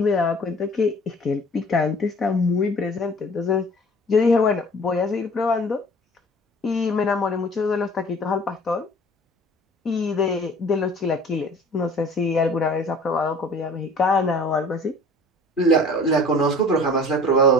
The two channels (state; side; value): normal; both; correlation 0.48